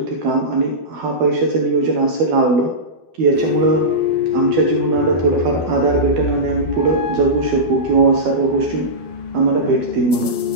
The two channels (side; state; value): left; late; 12 ms